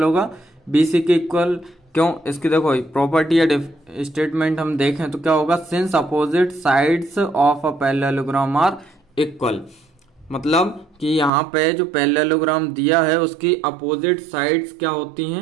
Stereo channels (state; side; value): drops out; left; at 11.3 s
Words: होगा, बी सी के इक्वल। क्यों, इसकी देखो प्रॉपर्टी या स्टेटमेंट हम देखें तो क्या होगा, since opposite sides of a parallelogram are equal. मतलब कि यहाँ पे जो पैरेललोग्राम दिया है उसकी अपोजिट साइड्स क्या होती